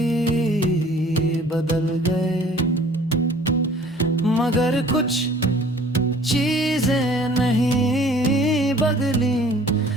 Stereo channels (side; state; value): both; normal; correlation 0.52